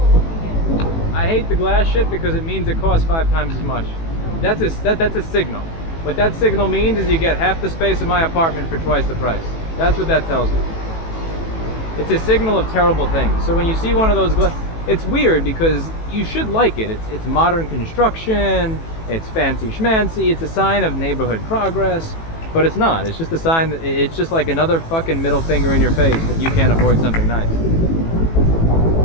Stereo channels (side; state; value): right; late; 18 ms